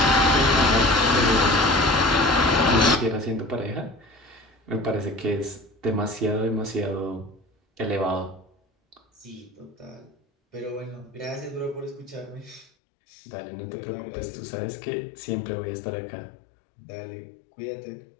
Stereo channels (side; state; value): right; drops out; at 12.7 s